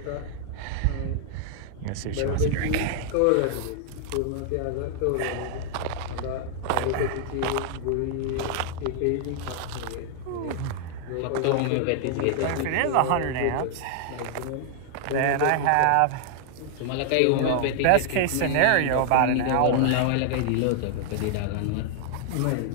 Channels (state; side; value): different; both; correlation 0.00